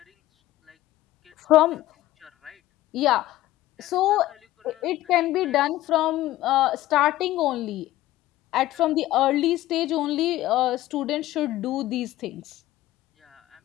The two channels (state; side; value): quieter; right; 15.5 dB